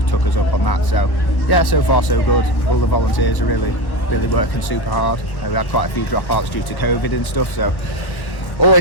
us up on that, so yeah, so far so good. All the volunteers are really working super hard. We had quite a few dropouts due to COVID and stuff, so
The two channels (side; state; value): right; late; 1.4 ms